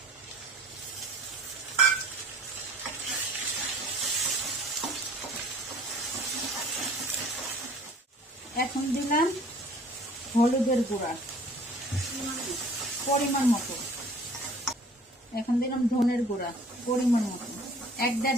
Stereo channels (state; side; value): normal; both; correlation 0.50